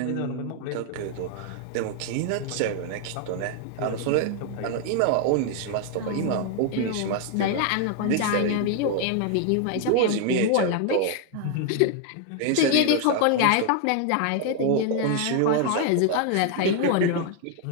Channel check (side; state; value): both; different; correlation 0.00